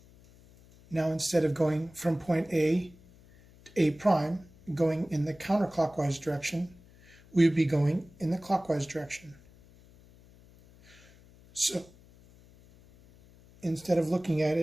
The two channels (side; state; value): left; noise; hum, 25 dB below the sound